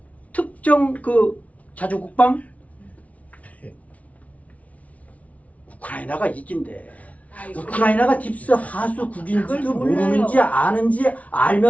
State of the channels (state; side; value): late; right; 0.068 ms